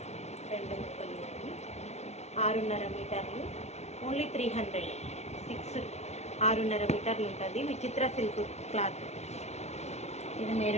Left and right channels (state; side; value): late; right; 0.32 ms